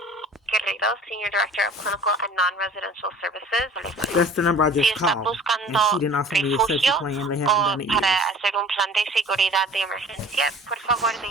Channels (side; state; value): both; normal; correlation 0.46